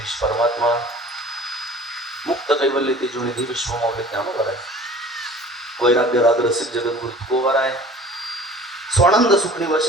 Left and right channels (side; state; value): both; normal; correlation 0.45